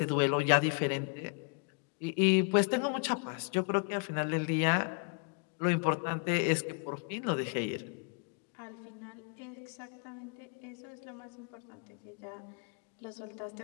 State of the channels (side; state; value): right; quieter; 35.7 dB